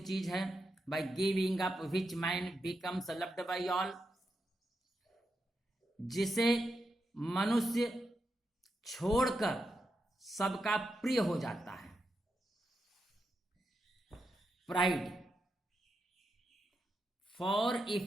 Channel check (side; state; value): both; normal; correlation 0.85